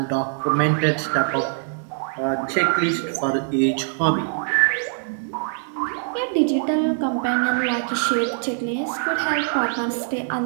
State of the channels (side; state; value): left; silent; digital silence